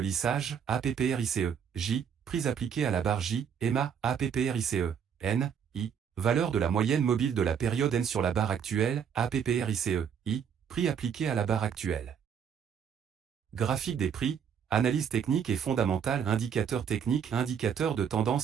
APPRICE, J, prix appliqué à la barre J, EMA, APPRICE, N, I, valeur de la moyenne mobile de la période N sur la barre actuelle, APPRICE, I, prix appliqué à la barre actuelle. Graphique des prix, analyse technique et fondamentale, indicateur technique, indicateur de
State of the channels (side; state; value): left; quieter; 7.6 dB